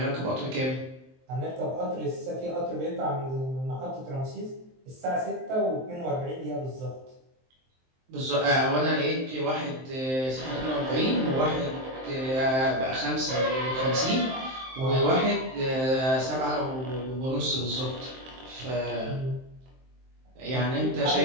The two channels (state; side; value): late; left; 23 ms